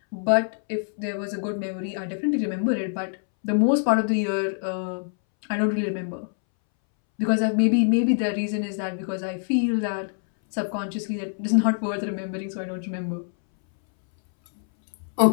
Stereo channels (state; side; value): silent; right; 62 dB below the other